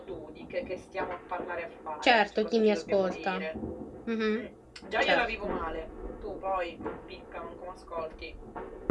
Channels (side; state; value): both; identical; correlation 1.00